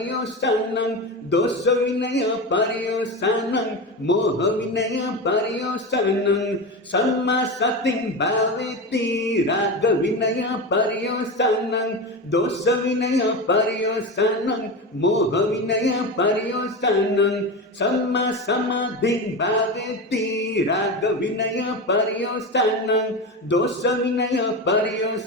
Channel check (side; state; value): both; normal; correlation 0.21